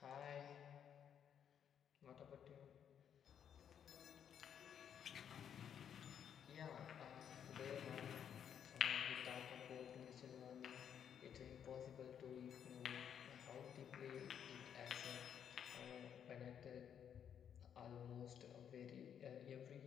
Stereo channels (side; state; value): right; quieter; 8.6 dB